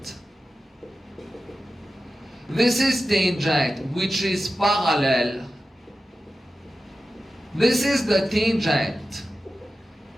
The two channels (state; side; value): normal; both; correlation 0.93